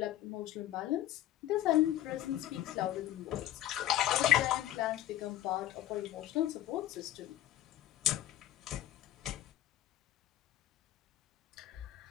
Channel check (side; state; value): right; quieter; 12.9 dB